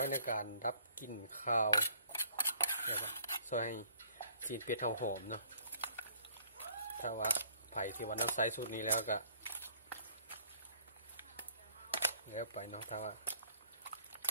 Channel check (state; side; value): inverted; both; correlation -0.58